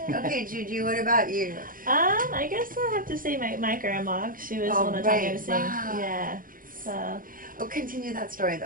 Okay, JuJu, what about you? I guess I'll have to say my grandma. She was the one that taught me how to sing. Wow. Yeah. So. Oh, continue that story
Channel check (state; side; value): late; left; 0.40 ms